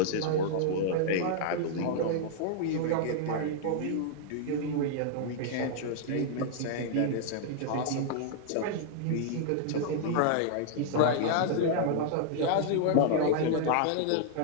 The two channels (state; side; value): different; both; correlation -0.01